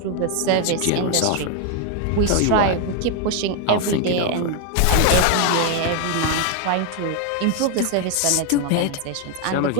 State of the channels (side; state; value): both; different; correlation 0.01